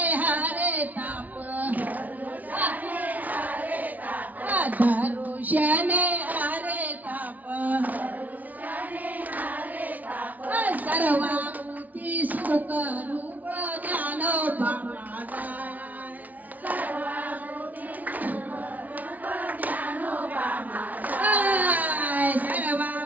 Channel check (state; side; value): late; left; 0.075 ms